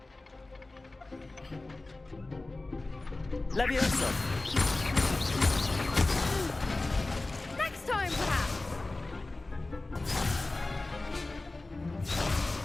Levioso. Next time, perhaps!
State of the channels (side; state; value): right; quieter; 3.1 dB